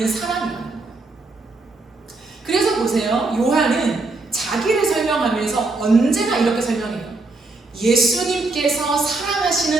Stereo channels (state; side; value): quieter; left; 3.4 dB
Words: 사랑이라는 거예요. 그래서 보세요. 요한은 자기를 설명하면서 언제나 이렇게 설명해요. 예수님께서